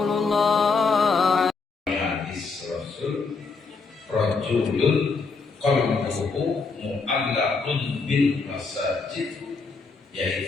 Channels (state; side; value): quieter; right; 4.4 dB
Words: Hadis Rasul rajulun qalbuhu mu'allaqun bil masajid,